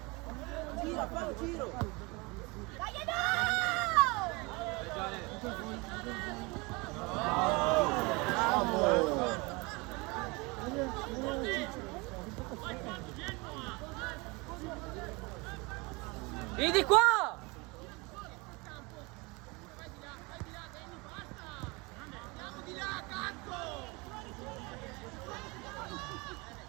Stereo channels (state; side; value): quieter; left; 26.4 dB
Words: Gira, fa un giro. Dai, dai. Bravo. Vedi qua!